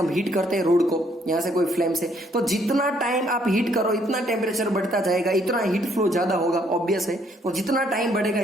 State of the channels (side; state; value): both; normal; correlation 0.68